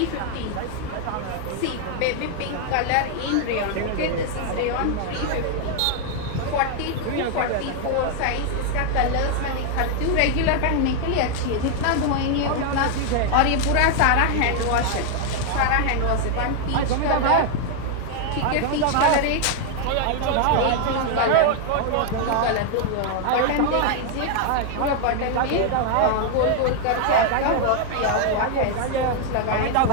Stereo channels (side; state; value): both; different; correlation 0.00